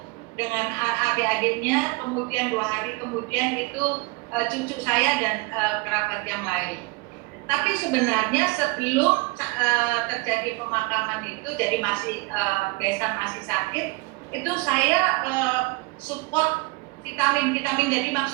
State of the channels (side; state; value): left; quieter; 25.1 dB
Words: dengan adik-adiknya, kemudian 2 hari kemudian itu cucu saya dan kerabat yang lain. Tapi sebenarnya sebelum terjadi pemakaman itu, jadi masih besan masih sakit, itu saya support vitamin, jadi